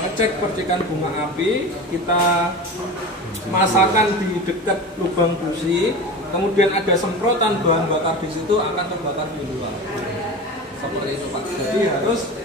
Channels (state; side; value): normal; both; correlation 0.30